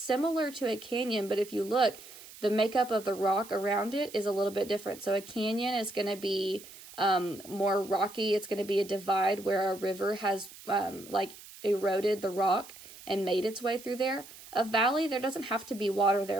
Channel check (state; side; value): noise; right; hiss, 18 dB below the sound